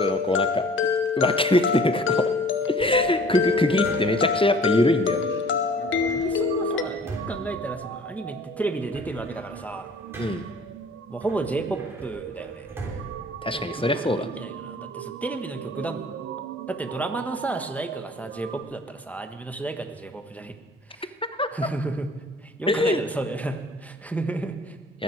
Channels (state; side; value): normal; both; correlation 0.50